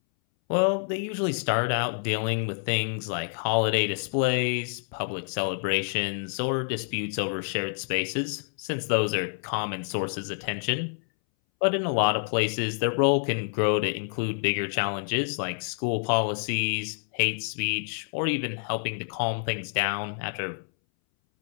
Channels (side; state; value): right; silent; 60 dB below the other